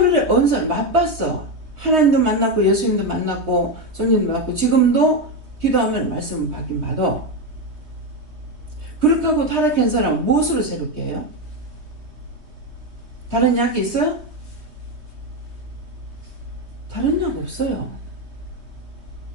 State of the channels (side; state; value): left; late; 3.2 ms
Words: 언사를 맛봤어. 하나님도 만났고 예수님도 만났고 성령도 만났고 지금도 기도하면 말씀을 받긴 받아. 그렇게 하고 타락한 사람은 무엇으로 새롭게 해요? 다른 약이 있어요? 다른 약 없어요.